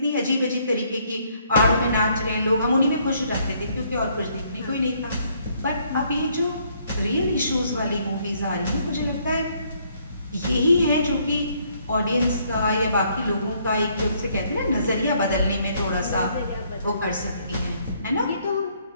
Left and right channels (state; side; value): inverted; both; correlation -0.68